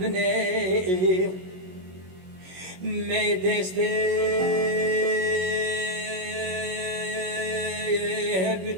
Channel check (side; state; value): left; late; 21 ms